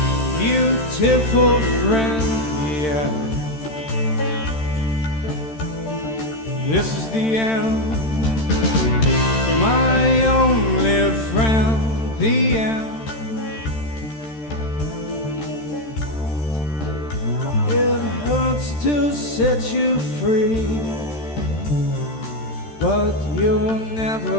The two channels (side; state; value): right; late; 13 ms